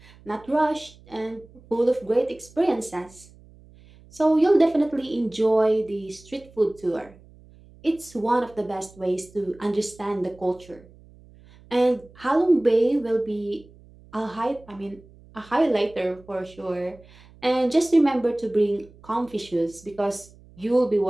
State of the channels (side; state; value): right; noise; hum, 25 dB below the sound